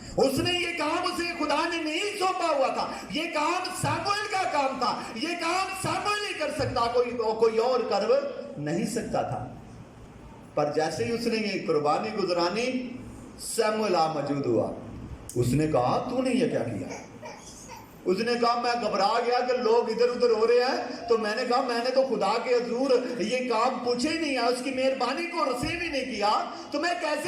اس نے یہ کام اسے خدا نے نہیں سونپا ہوا تھا. یہ کام ساموئیل کا کام تھا. یہ کام ساموئیل نہیں کر سکتا، کوئی اور کر نہیں سکتا تھا. پر جیسے ہی اس نے یہ قربانی گزرانی، ساموئیل موجود ہوا. اس نے کہا تو نے یہ کیا کیا؟ اس نے کہا میں گھبرا گیا کہ لوگ ادھر ادھر ہو رہے ہیں، تو میں نے کہا میں نے تو خدا کے حضور یہ کام پوچھے ہی نہیں ہے، اس کی مہربانی کو رسیو ہی نہیں کیا، تو میں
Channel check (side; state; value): both; identical; correlation 1.00